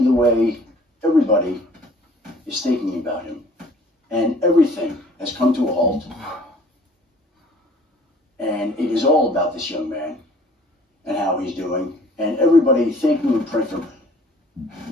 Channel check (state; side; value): normal; both; correlation 0.53